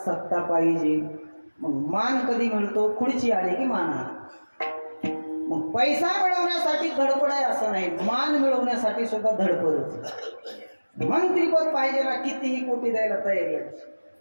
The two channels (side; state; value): both; inverted; correlation -1.00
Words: पाहिजे. मग मान कधी मिळतो, खुर्ची आली की मान आला. मग पैसा मिळवण्यासाठी धडपड आहे असं नाही, मान मिळवण्यासाठी सुद्धा धडपडच. मंत्रीपद पाहिजे ना, कितीही कोटी द्यायला तयारी आहे,